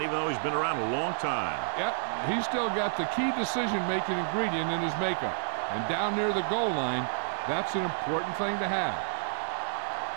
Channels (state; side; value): silent; left; digital silence